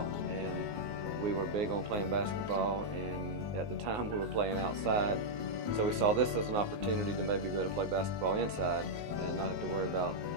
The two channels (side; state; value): left; late; 19 ms